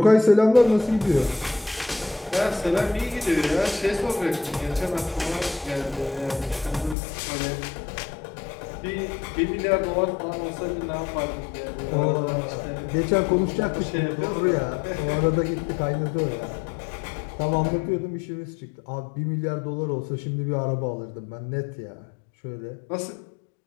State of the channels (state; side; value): drops out; right; at 7.0 s